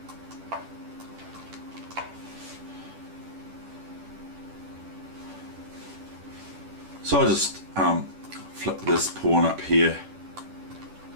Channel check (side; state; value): left; late; 10 ms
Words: So I just flip this pawn up here,